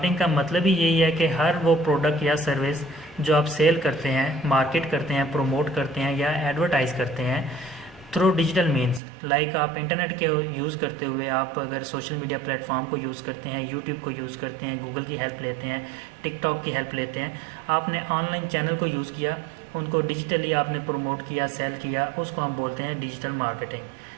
का मतलब ही यही है कि हर वो प्रोडक्ट या सर्विस जो आप सेल करते हैं, मार्केट करते हैं, प्रमोट करते हैं या एडवर्टाइज़ करते हैं थ्रू डिजिटल मीन्स, लाइक आप इंटरनेट के यूज़ करते हुए, आप अगर सोशल मीडिया प्लेटफॉर्म को यूज़ करते हैं, यूट्यूब को यूज़ करते हैं, गूगल की हेल्प लेते हैं, टिकटॉक की हेल्प लेते हैं, आपने ऑनलाइन चैनल को यूज़ किया, उनको डिजिटली आपने प्रमोट किया, सेल किया, उसको हम बोलते हैं डिजिटल मार्केटिंग।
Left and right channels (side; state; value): left; drops out; at 9.0 s